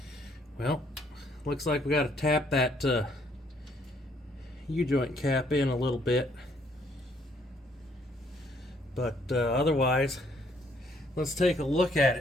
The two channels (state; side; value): normal; both; correlation 0.67